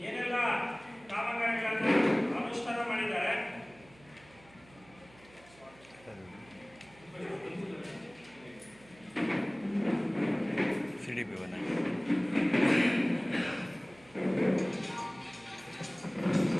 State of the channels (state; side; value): noise; right; hum, 25 dB below the sound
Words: ಏನೆಲ್ಲ ಕಾಮಗಾರಿಗಳನ್ನ ಅನುಷ್ಠಾನ ಮಾಡಿದ್ದಾರೆ. CDP